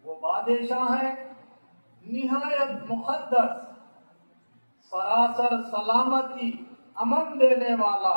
वो बादशाह है निहायत मुक़द्दस, सरासर सलामती अमन देने वाला,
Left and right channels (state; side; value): inverted; both; correlation -1.00